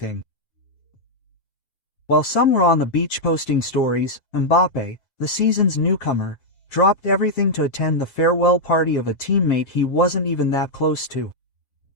While some were on the beach posting stories, Mbappé, the season's newcomer, dropped everything to attend the farewell party of a teammate he wasn't even that close to.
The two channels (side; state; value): right; late; 7.4 ms